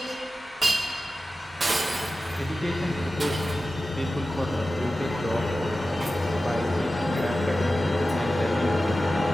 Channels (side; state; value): both; normal; correlation 0.94